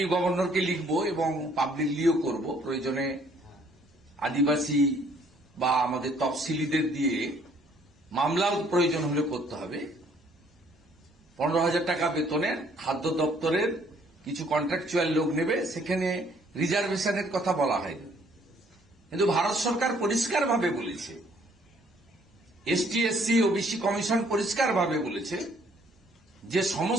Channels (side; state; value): both; normal; correlation 0.62